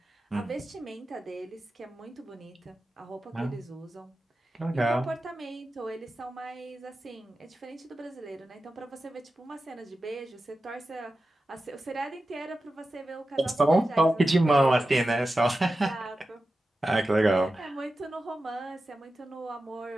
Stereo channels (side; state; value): both; normal; correlation 0.93